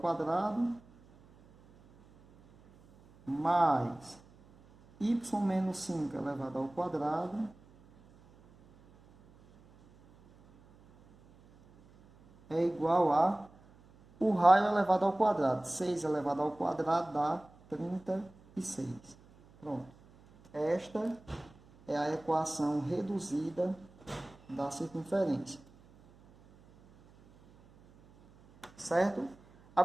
mais y menos 5 elevado ao quadrado é igual a o raio elevado ao quadrado. 6 elevado ao quadrado dá 36. Pronto. Esta é a equação reduzida da circunferência. Certo?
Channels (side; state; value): right; noise; hum, 26 dB below the sound